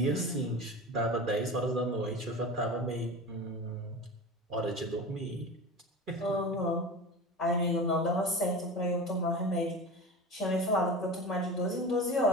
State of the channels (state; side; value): normal; both; correlation 0.31